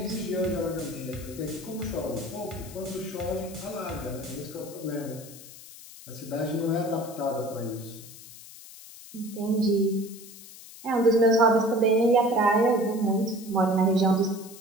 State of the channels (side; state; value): left; noise; hiss, 17 dB below the sound